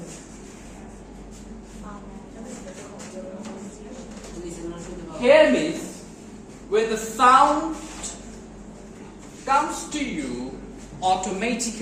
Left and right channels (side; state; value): both; identical; correlation 1.00